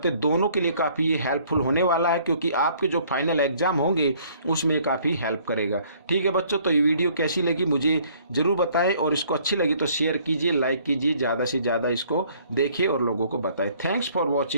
हैं, दोनों के लिए काफ़ी हेल्पफुल होने वाला है, क्योंकि आपके जो फाइनल एग्जाम होंगे उसमें काफ़ी हेल्प करेगा। ठीक है बच्चों, तो ये वीडियो कैसी लगी मुझे ज़रूर बताएं, और इसको अच्छी लगी तो शेयर कीजिए, लाइक कीजिए, ज़्यादा से ज़्यादा इसको देखिए और लोगों को बताएं। Thanks for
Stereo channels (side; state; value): both; inverted; correlation -0.60